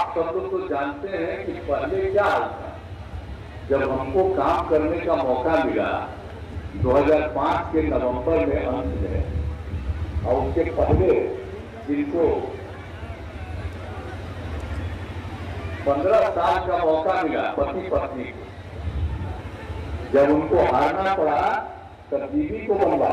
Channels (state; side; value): identical; both; correlation 1.00